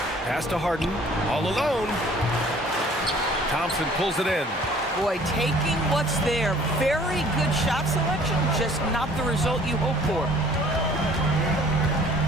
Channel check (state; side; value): normal; both; correlation 0.54